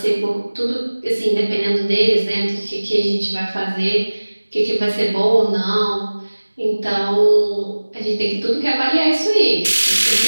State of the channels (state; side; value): inverted; both; correlation -1.00